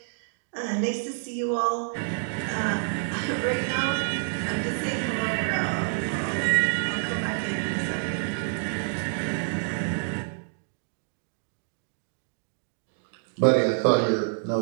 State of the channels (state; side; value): silent; left; digital silence